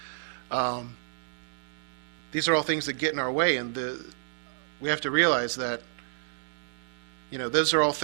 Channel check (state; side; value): silent; left; digital silence